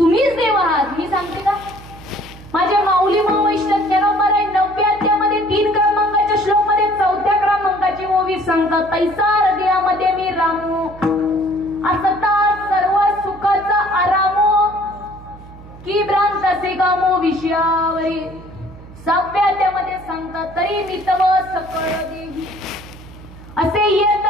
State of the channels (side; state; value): right; noise; hum, 18 dB below the sound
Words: देव आहात. मी सांगते का माझ्या माऊली वैष्णव नंबर आहे 90 अध्यायामध्ये 3 क्रमांकाच्या श्लोक मध्ये 4थ्या क्रमांकाची ओवी सांगतात तैसा हृदयामध्ये मी रामू असता सर्व सुखाचा आरामो की भ्रांत असे गामो विषयावरी. 6व्या अध्यायामध्ये सांगतात तरी मी तव सकळ देवी असे येत